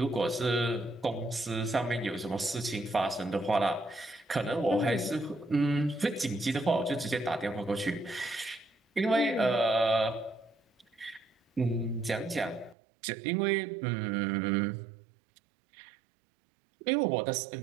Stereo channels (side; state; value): left; drops out; at 12.8 s